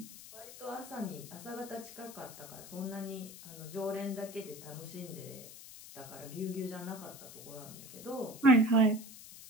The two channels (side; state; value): left; noise; hiss, 15 dB below the sound